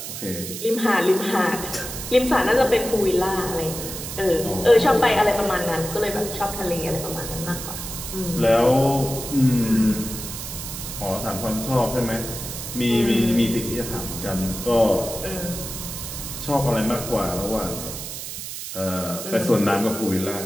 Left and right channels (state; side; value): noise; right; hiss, 8 dB below the sound